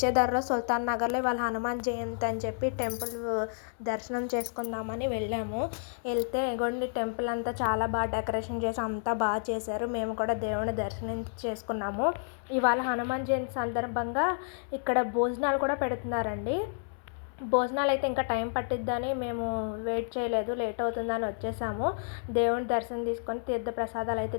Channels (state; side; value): silent; right; 58 dB below the other